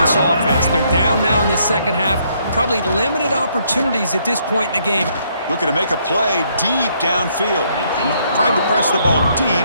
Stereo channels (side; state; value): both; inverted; correlation -0.70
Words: offense. They're down now in the second half. Probably limited opportunities at this point in the game. Looking to make a play deep downfield. Tried to press the ball deep,